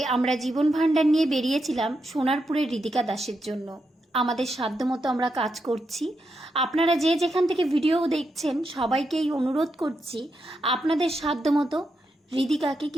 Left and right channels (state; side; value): normal; both; correlation 0.84